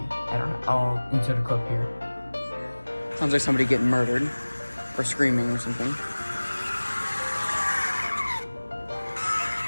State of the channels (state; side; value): inverted; both; correlation -1.00